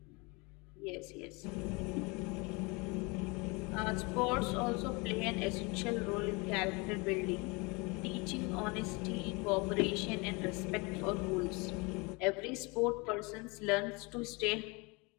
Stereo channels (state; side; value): quieter; right; 27.9 dB